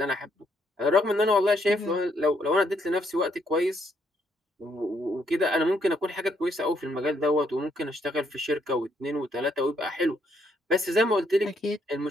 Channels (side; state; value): both; normal; correlation 0.72